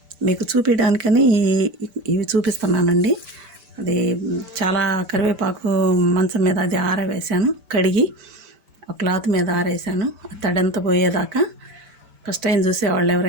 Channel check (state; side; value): late; left; 5.0 ms